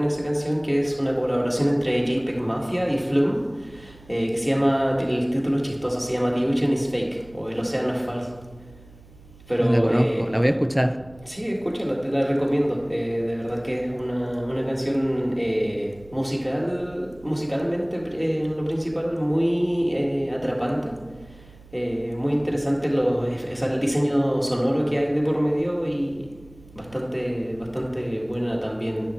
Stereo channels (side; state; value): right; noise; hum, 23 dB below the sound